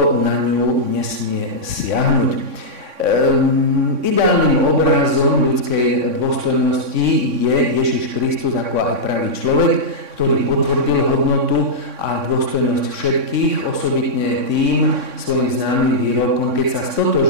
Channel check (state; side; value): late; left; 3.6 ms